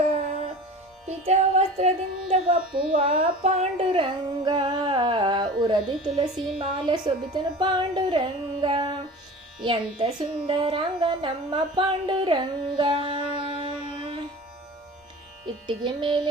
ಪಿತ ವಸ್ತ್ರದಿಂದ ಬಪ್ಪುವ ಪಾಂಡುರಂಗ, ಉರದಿ ತುಳಸಿ ಮಾಲೆ ಸೊಬಿತನು ಪಾಂಡುರಂಗ, ಎಂತ ಸುಂದರಂಗ ನಮ್ಮ ಪಾಂಡುರಂಗ. ಇಟ್ಟಿಗೆ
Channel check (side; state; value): both; normal; correlation 0.37